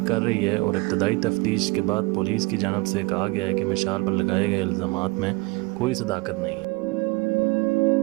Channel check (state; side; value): quieter; left; 24.8 dB